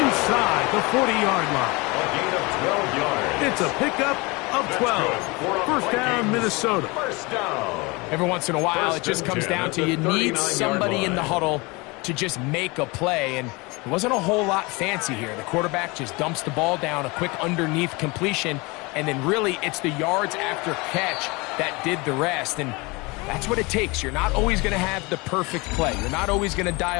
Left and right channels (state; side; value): quieter; right; 25.8 dB